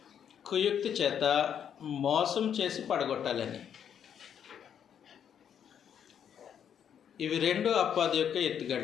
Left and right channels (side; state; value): right; quieter; 8.7 dB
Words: కుయుక్తి చేత మోసం చేసి పడగొట్టాలని. ఇవి రెండు అపవాది యొక్క